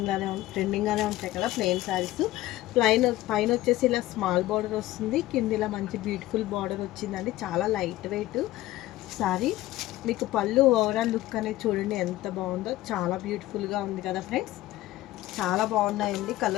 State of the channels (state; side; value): quieter; right; 16.1 dB